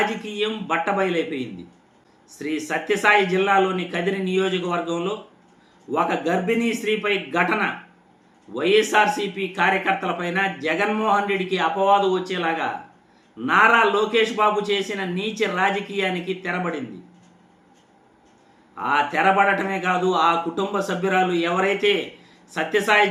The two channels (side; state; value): both; identical; correlation 1.00